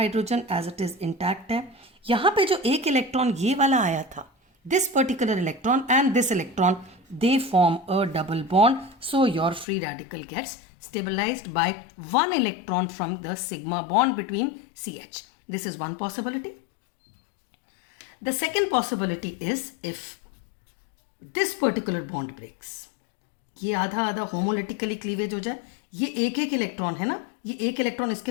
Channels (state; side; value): drops out; right; at 9.7 s